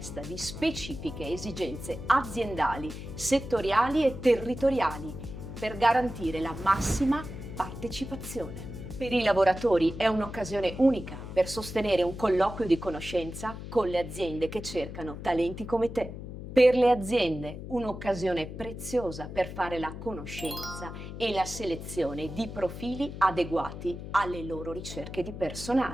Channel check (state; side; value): noise; left; hum, 10 dB below the sound